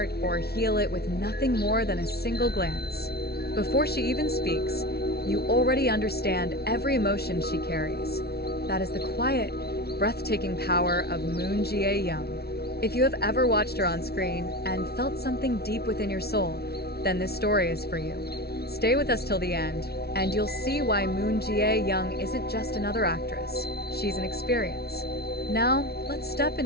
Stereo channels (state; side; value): late; right; 0.46 ms